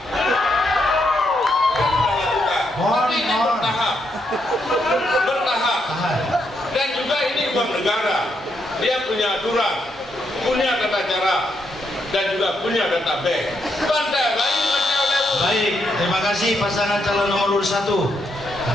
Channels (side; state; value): both; normal; correlation 0.78